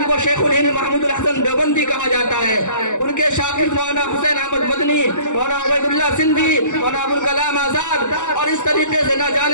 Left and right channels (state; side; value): late; right; 0.85 ms